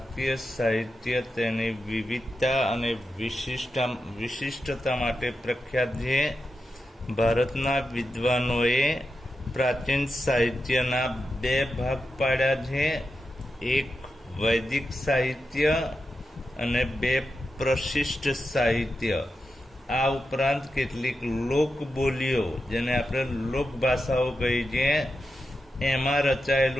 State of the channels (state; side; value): normal; both; correlation 0.89